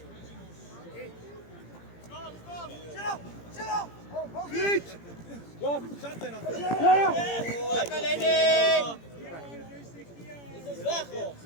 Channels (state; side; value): late; right; 17 ms